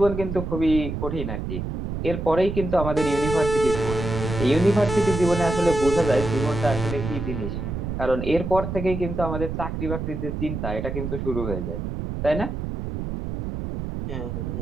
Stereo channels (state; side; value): noise; right; rumble, 5 dB below the sound